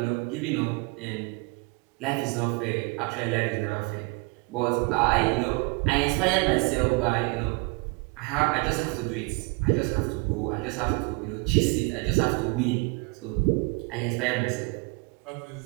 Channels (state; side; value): quieter; left; 28.7 dB